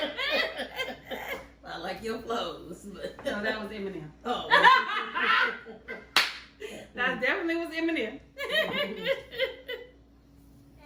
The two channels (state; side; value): identical; both; correlation 1.00